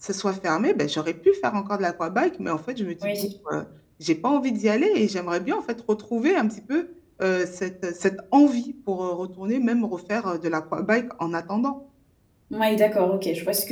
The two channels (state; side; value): identical; both; correlation 1.00